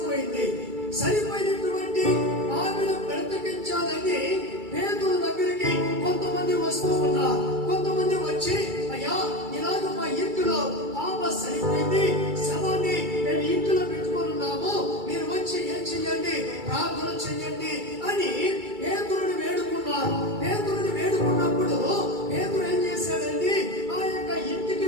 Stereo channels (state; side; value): late; left; 2.3 ms